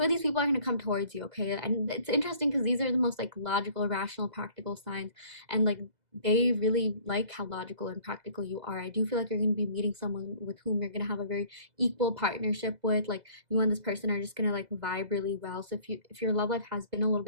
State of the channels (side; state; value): left; late; 2.0 ms